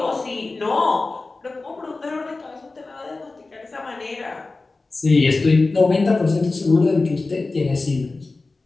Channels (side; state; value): right; quieter; 3.5 dB